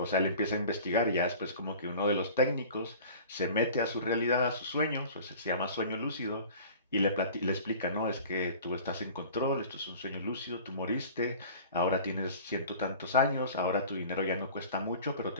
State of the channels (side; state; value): both; inverted; correlation -0.43